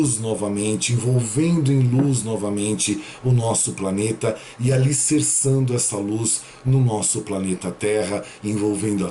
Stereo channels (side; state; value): both; identical; correlation 1.00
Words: novamente, envolvendo em luz novamente o nosso planeta e alicerçando essa luz no nosso planeta Terra, envolvendo a